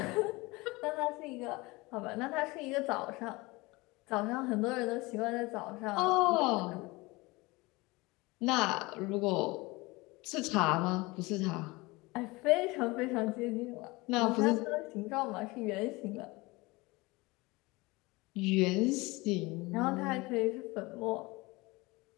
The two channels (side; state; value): right; quieter; 23.1 dB